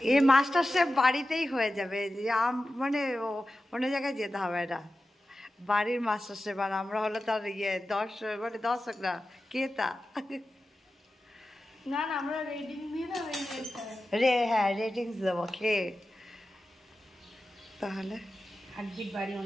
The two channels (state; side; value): normal; both; correlation 0.93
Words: এই মাস্টার শেফ বাড়িতেই হয়ে যাবে, মানে অন্য জায়গায় যেতে হবে না। বাড়ির মাস্টার শেফ, আর আমরা হলো তার দর্শক না, ক্রেতা। না আমরা রেটিং দিয়ে না, হ্যাঁ রেটিংস দেবো খেয়ে, তাহলে হার্টবিট বাড়িও